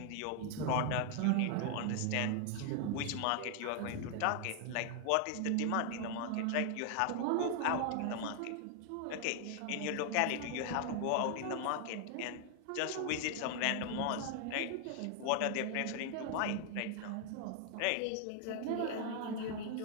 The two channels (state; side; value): different; both; correlation 0.00